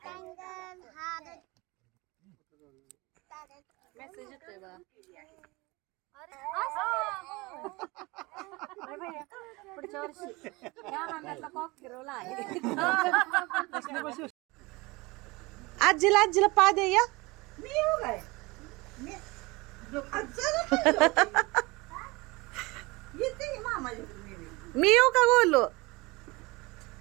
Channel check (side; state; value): left; quieter; 23.8 dB